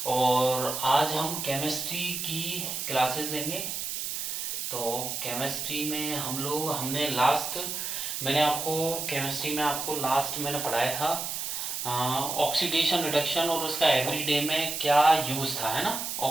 और आज हम केमिस्ट्री की क्लासेस लेंगे। तो केमिस्ट्री में हमने लास्ट मैंने आपको केमिस्ट्री में आपको लास्ट मैंने पढ़ाया था ऑक्सीडेशन रिडक्शन और उसका एवरीडे में क्या यूज़ था, है ना।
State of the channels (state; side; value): noise; right; hiss, 4 dB below the sound